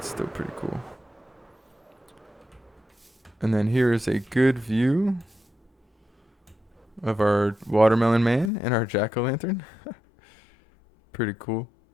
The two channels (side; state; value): right; drops out; at 8.5 s